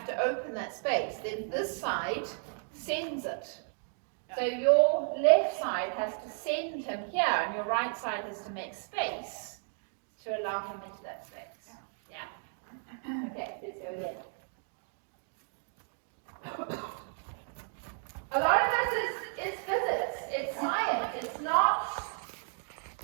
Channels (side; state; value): left; silent; 55 dB below the other